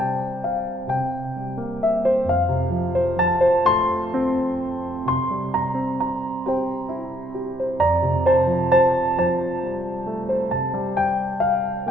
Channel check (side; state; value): both; normal; correlation 0.70